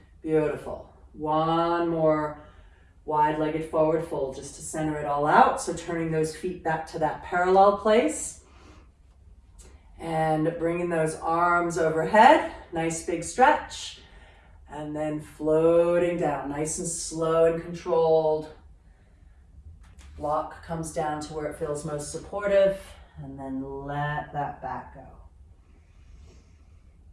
Beautiful. One more wide-legged forward fold just to center it all out. So turning those feet back to that parallel place and bringing those arms overhead. Nice big stretch. And then floating down, nice and slow and controlled. Block comes down to where it feels most supportive, and then let that back go.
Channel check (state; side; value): identical; both; correlation 1.00